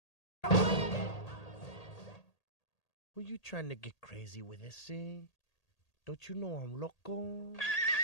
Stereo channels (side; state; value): right; late; 1.8 ms